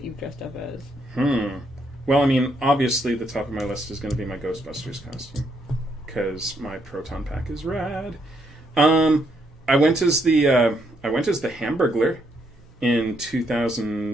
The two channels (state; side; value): normal; both; correlation 0.74